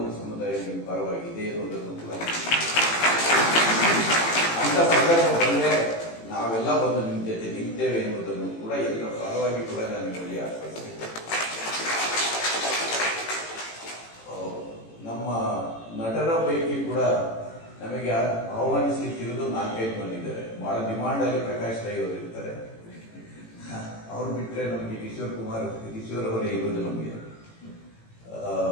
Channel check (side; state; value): right; late; 18 ms